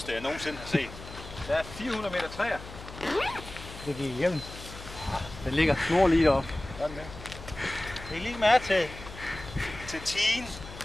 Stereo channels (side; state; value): left; noise; hum, 14 dB below the sound